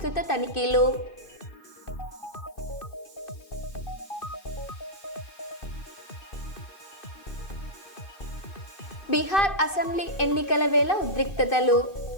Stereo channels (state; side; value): late; right; 2.5 ms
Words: తనిఖీలు. బీహార్ అసెంబ్లీ ఎన్నికల వేళ ఉద్రిక్తతలు.